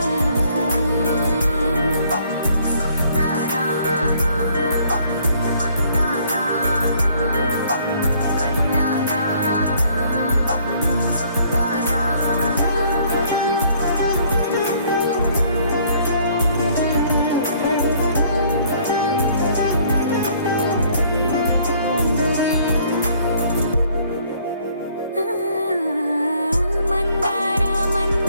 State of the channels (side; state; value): both; inverted; correlation -0.61